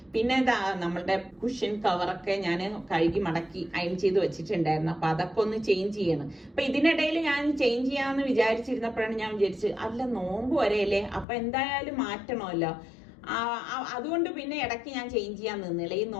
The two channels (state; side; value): drops out; right; at 11.2 s